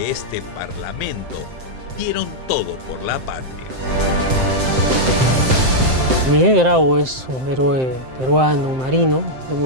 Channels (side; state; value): left; late; 7.7 ms